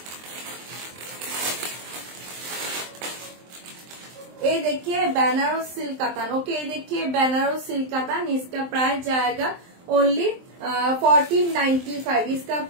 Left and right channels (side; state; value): left; late; 23 ms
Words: ये देखिए बनारस सिल्क कातान। ओके ये देखिए बनारस सिल्क कातान, इसका प्राइस जाएगा ओनली 1495, इसका